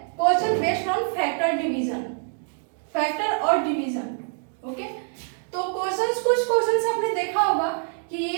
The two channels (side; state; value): left; silent; 62 dB below the other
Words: क्वेश्चन बेस्ड ऑन फैक्टर और डिवीजन। ओके, तो कुछ क्वेश्चंस आपने देखा होगा कि